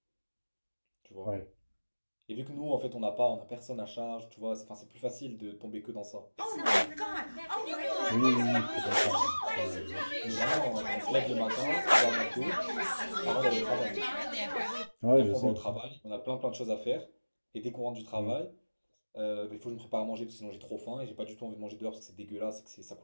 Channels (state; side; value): inverted; both; correlation -1.00